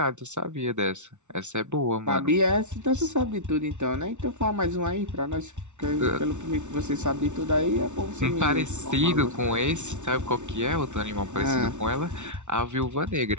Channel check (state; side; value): late; left; 0.84 ms